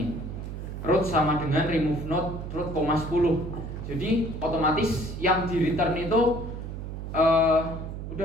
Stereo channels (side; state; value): right; noise; hum, 7 dB below the sound